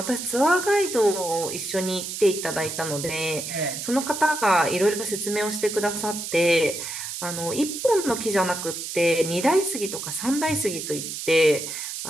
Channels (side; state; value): right; noise; hiss, 6 dB below the sound